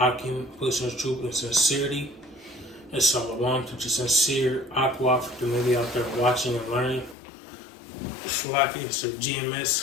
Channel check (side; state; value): right; drops out; at 7.2 s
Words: pushing truth and sincerity. And shalom to the sincere Aqua for the maybe out there watching and learning. Shalaki, it's the